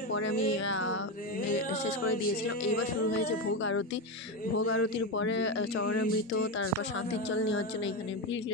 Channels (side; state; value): both; normal; correlation 0.13